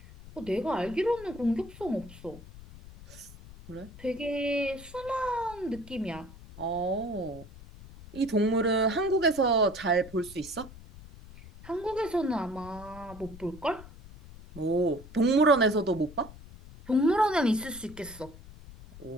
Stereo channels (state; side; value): noise; left; rumble, 18 dB below the sound